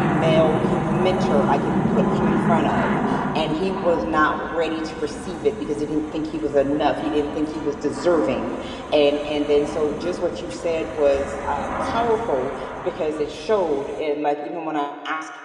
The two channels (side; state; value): both; identical; correlation 1.00